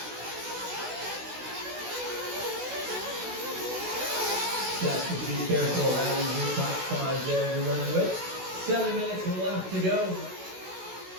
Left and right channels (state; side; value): late; left; 16 ms